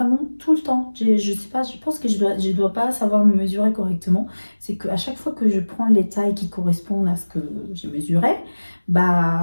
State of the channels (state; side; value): inverted; both; correlation -1.00